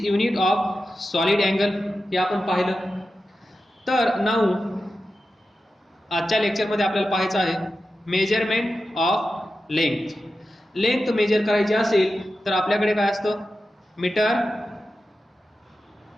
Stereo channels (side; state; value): both; normal; correlation 0.92